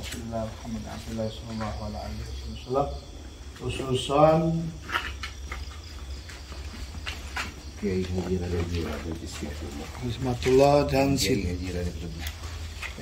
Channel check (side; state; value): both; identical; correlation 1.00